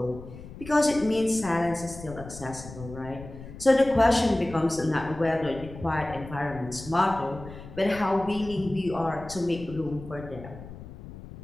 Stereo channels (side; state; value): left; noise; rumble, 14 dB below the sound